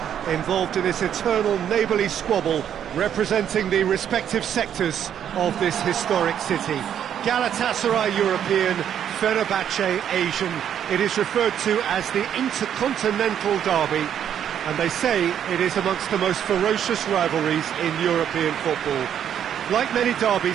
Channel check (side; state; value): left; quieter; 9.4 dB